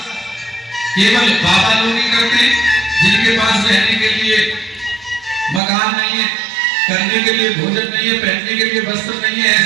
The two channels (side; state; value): left; drops out; at 5.6 s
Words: केवल बाबा लोग ही करते हैं, जिनके पास रहने के लिए मकान नहीं है, करने के लिए भोजन नहीं है, पहनने के लिए वस्त्र नहीं है,